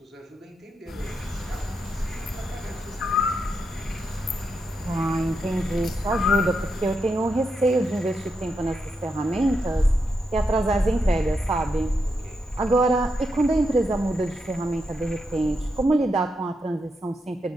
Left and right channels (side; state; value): both; normal; correlation 0.84